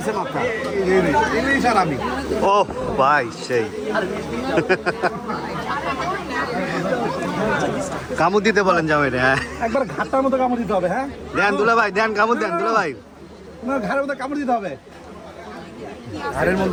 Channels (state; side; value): identical; both; correlation 1.00